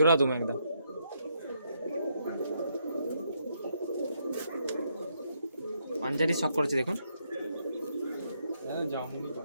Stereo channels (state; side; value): inverted; both; correlation -0.76